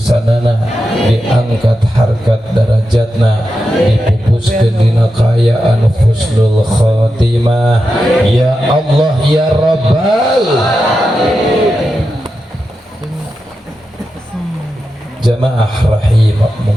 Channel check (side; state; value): both; normal; correlation 0.89